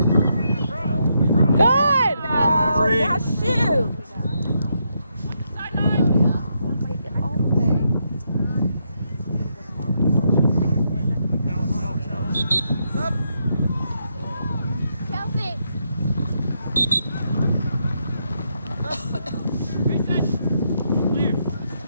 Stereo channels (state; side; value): inverted; both; correlation -0.79